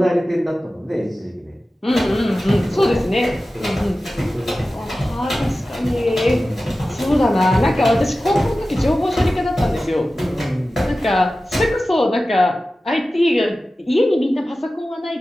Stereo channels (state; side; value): normal; both; correlation 0.95